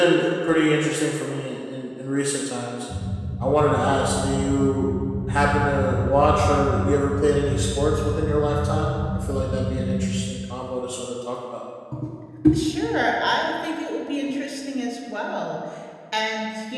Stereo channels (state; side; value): identical; both; correlation 1.00